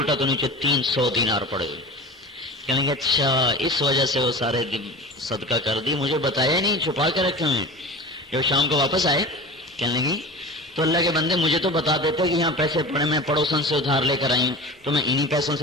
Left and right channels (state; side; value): normal; both; correlation 0.34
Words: تو نیچے 300 دینار پڑے ہوئے. کہنے لگے اچھا اس وجہ سے وہ سارے صدقہ کر دی، مجھے بتایا نہیں، چھپا کے رکھے ہوئے. جب شام کو واپس آئے کہنے لگی تو اللہ کے بندے مجھے تو بتا دیتے کہ یہاں پیسے پڑے، میں پڑوسن سے ادھار لے کر آئی ہوں تو میں انہی پیسوں